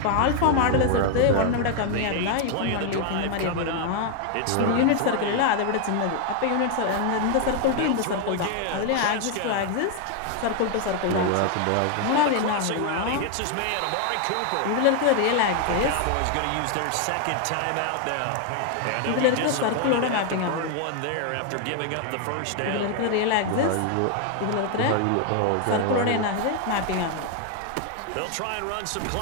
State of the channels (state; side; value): different; both; correlation 0.00